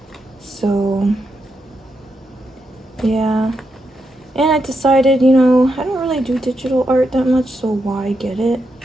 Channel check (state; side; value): normal; both; correlation 0.83